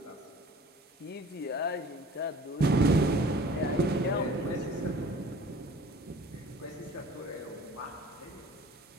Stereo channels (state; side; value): normal; both; correlation 0.47